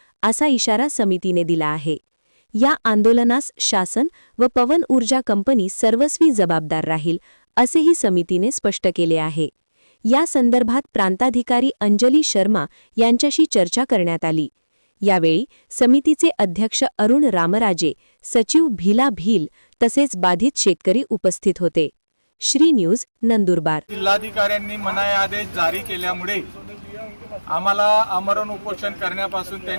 असा इशारा समितीने दिला आहे। या आंदोलनास शासन व पवन ऊर्जा कंपनी सर्वस्वी जबाबदार राहील, असेही समितीने स्पष्ट केले आहे। या संदर्भात प्रांताधिकारी अंजली शर्मा यांच्याशी चर्चा करण्यात आली। यावेळी समितीचे अध्यक्ष अरुण रामराजे, सचिव भीला भील तसेच बाधित शेतकरी उपस्थित होते। श्री न्यूज नंदुरबार। जिल्हाधिकाऱ्यांनी मनाई आदेश जारी केल्यामुळे आम्हाला आमरण उपोषण करण्यापासून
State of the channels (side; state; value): both; inverted; correlation -1.00